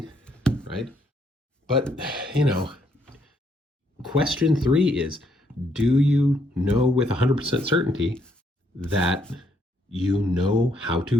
right? But, question 3 is, do you know with 100% certainty that you know how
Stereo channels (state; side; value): normal; both; correlation 0.72